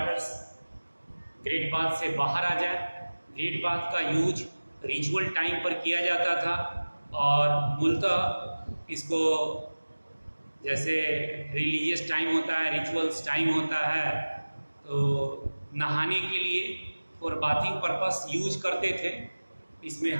ग्रेट बाथ से बाहर आ जाए। ग्रेट बाथ का यूज रिचुअल टाइम पर किया जाता था और मूलतः इसको जैसे रिलीजियस टाइम होता है, रिचुअल्स टाइम होता है, तो नहाने के लिए और बाथिंग पर्पस यूज करते थे। इसमें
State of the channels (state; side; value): inverted; both; correlation -1.00